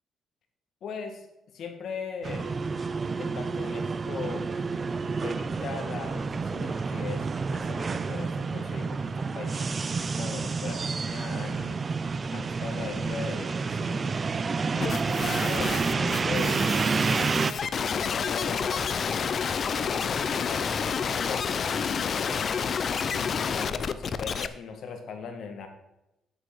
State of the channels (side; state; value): both; normal; correlation 0.81